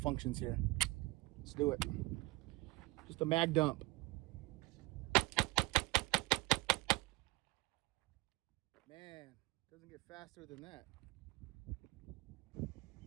here. Let's do it. Just a mag dump. Man, doesn't get faster than that.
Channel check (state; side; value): quieter; left; 21.2 dB